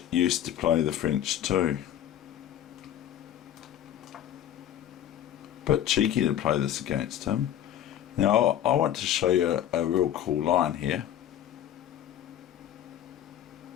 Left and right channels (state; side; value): quieter; right; 11.1 dB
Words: used to play the French too. But cheeky to play this against him. Now I want to show you a real cool line here.